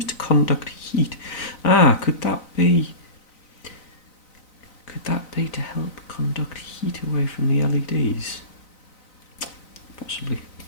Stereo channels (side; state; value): right; late; 4.0 ms